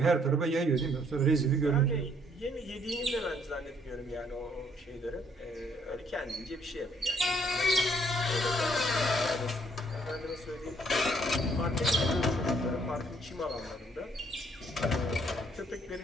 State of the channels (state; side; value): normal; both; correlation 0.66